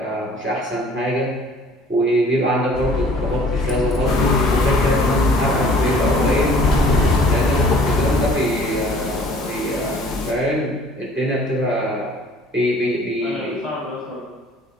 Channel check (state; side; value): normal; both; correlation 0.53